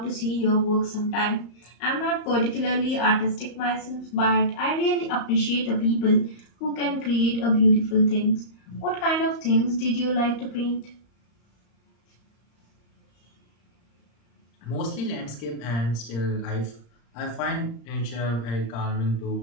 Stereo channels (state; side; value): late; right; 34 ms